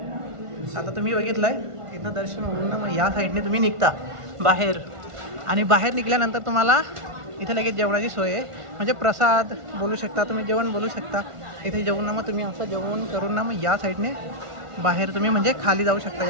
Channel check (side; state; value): left; late; 1.5 ms